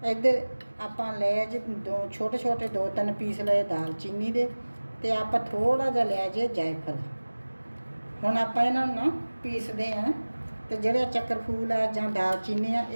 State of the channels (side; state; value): both; inverted; correlation -1.00